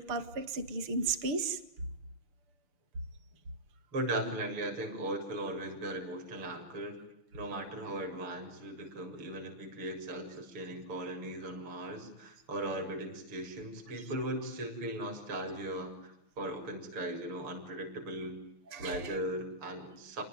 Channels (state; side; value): late; left; 6.8 ms